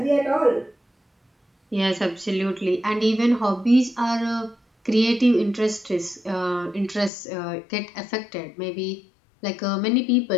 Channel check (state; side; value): drops out; right; at 7.1 s